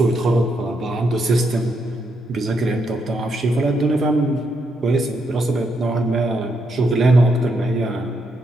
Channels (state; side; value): normal; both; correlation 0.79